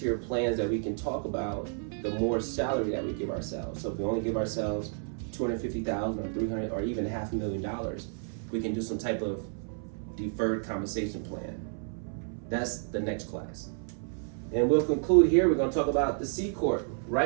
plans that we can talk about, the more salary that we give ourselves. So if we only give ourselves $250,000 or $300,000 or even $500,000, we can do some type of deferred compensation plan. That's the next class. And we'll conclude here. We're going to talk about the C Corp.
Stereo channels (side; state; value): left; silent; 57 dB below the other